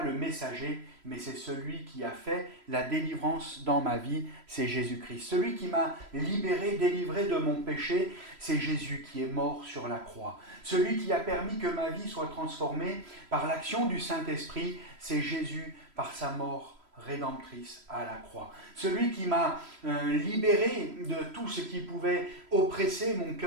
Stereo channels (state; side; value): late; left; 3.0 ms